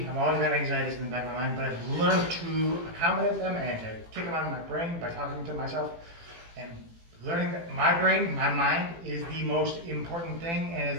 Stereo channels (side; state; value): left; late; 18 ms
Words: I've always got anxieties in the back of my mind. But I've learned to accommodate them and to kick them out of my brain by talking to myself. And learning that my brain, my mind, is the most important thing and is